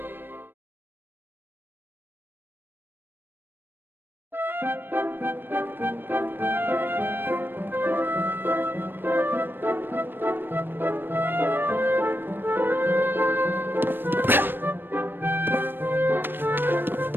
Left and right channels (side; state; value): left; late; 0.096 ms